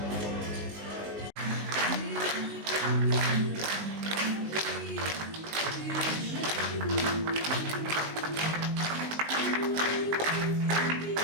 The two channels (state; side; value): late; left; 19 ms